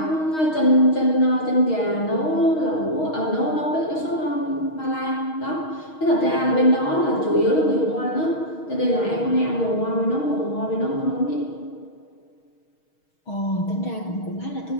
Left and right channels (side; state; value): right; late; 6.4 ms